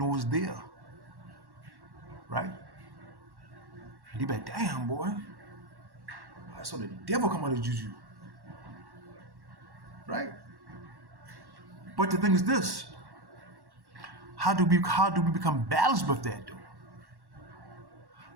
was there, right? And you be like, damn, boy, I saw the devil come out of juju, right? But the thing is this: how do we become balanced with that, though?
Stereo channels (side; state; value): left; late; 1.1 ms